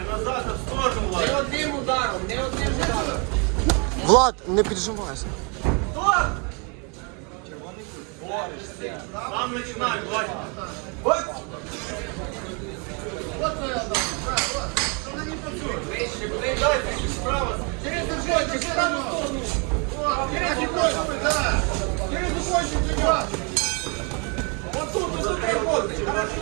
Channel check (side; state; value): left; quieter; 34.3 dB